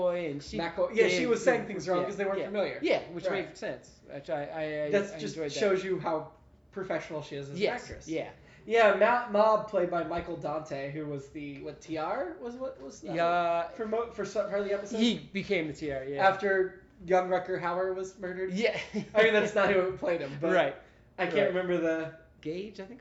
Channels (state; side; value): identical; both; correlation 1.00